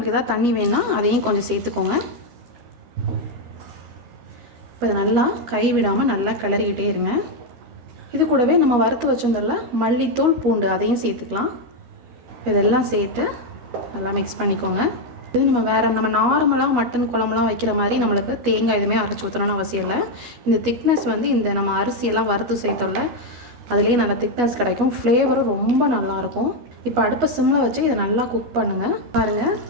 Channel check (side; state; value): left; late; 12 ms